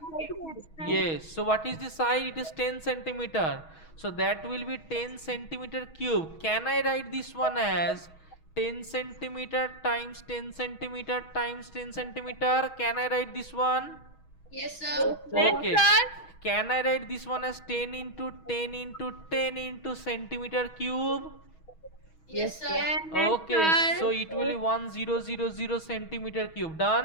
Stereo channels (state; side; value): late; right; 6.3 ms